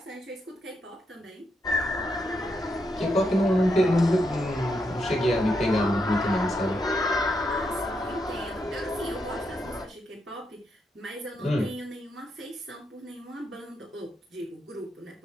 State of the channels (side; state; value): both; normal; correlation 0.81